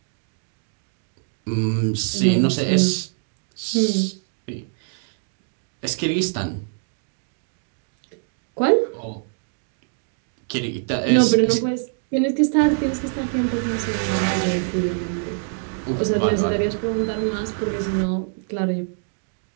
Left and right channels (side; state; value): left; silent; 58 dB below the other